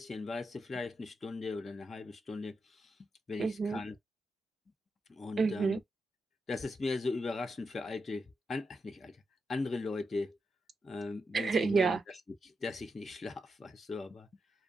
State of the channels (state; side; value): normal; both; correlation 0.86